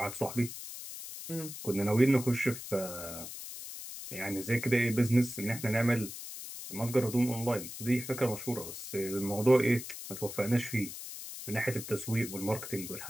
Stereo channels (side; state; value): left; noise; hiss, 10 dB below the sound